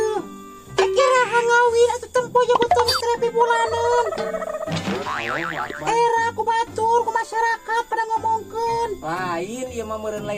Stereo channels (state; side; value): identical; both; correlation 1.00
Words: Kira hangawi atuh tempo ya betul terapi bulanan. Era ku batur ku masyarakat pada ngomongkeun. Lain ieu mah meureun